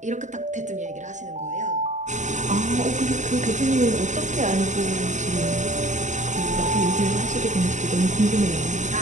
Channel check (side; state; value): left; late; 0.35 ms